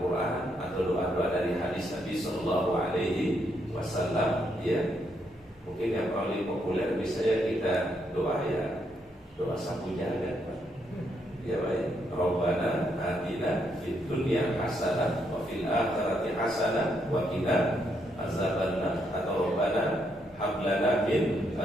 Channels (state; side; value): normal; both; correlation 0.76